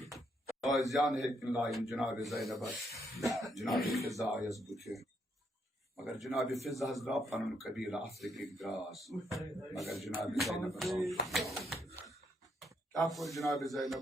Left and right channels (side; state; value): both; normal; correlation 0.75